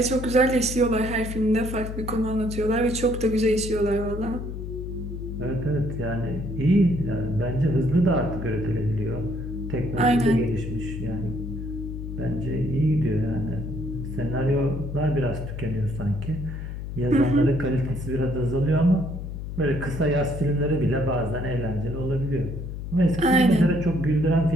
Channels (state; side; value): noise; left; hum, 7 dB below the sound